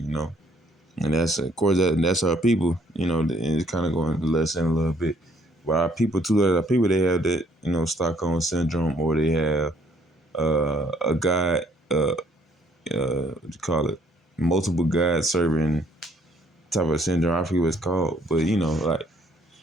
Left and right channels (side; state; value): both; normal; correlation 0.64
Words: know. And that's of course that's our people, you know. And it's kind of going less in a little bit, but our people too. Our people they have that, you know, Stockholm syndrome, or they have a God, what you call it, multiple God serving type of syndrome. I forget what it's called, but you know, like